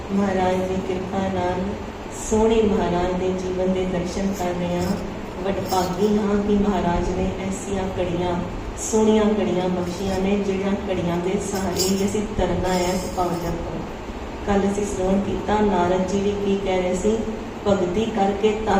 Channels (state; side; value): identical; both; correlation 1.00